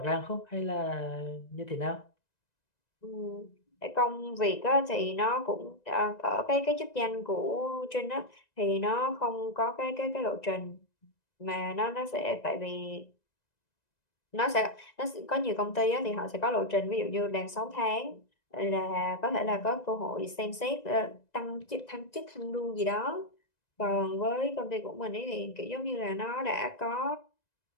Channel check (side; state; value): right; late; 1.9 ms